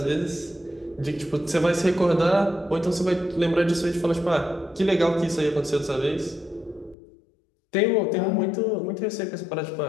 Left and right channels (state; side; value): drops out; right; at 7.0 s